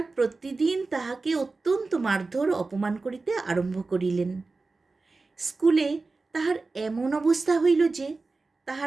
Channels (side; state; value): left; quieter; 3.7 dB